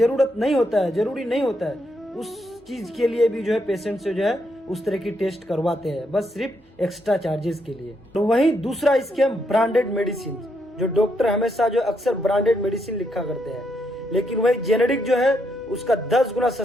नहीं होता है, जरूरी नहीं होता है। उस चीज के लिए भी जो है पेशेंट से जो है उस तरह की टेस्ट करवाते हैं, बस सिर्फ एक्स्ट्रा चार्जेस के लिए। तो वहीं दूसरा स्कैम ब्रांडेड मेडिसिन, जो डॉक्टर हमेशा जो अक्सर ब्रांडेड मेडिसिन लिखा करते हैं, लेकिन वही जेनेरिक जो है उसका 10 गुना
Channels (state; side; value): normal; both; correlation 0.77